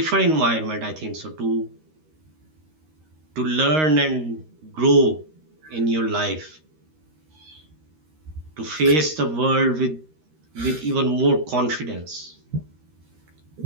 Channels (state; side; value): late; left; 13 ms